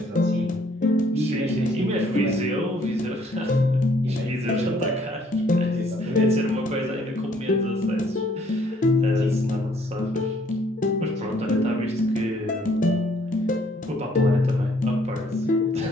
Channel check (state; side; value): normal; both; correlation 0.63